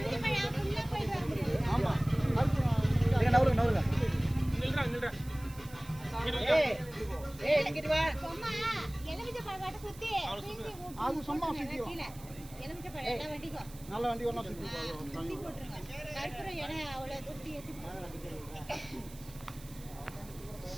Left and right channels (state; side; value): noise; right; hiss, 19 dB below the sound